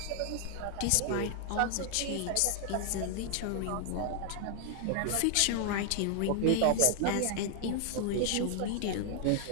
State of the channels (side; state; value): both; different; correlation 0.00